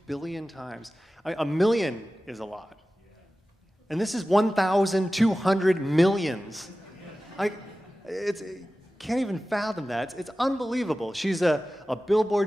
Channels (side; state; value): both; normal; correlation 0.96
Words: billion times. A million is a lot. And this is 1,200 millions. Can't even fathom that. It's unbelievable. She's a Billboard